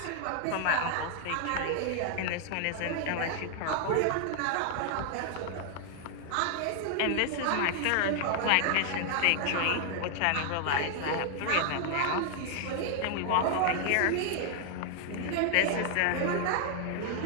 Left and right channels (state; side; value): different; both; correlation 0.00